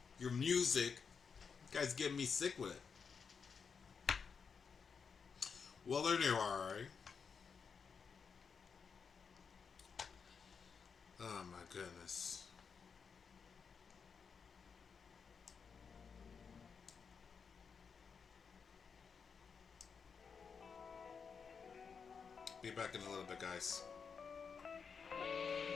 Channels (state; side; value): quieter; right; 5.9 dB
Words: music. You guys getting me sick with it. Well, there you are, right? Oh my goodness. Be back in a little bit, guys.